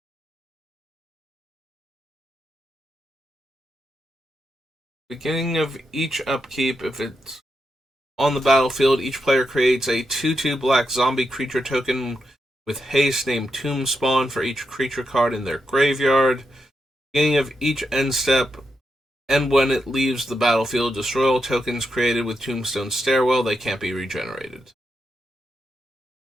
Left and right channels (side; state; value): both; normal; correlation 0.84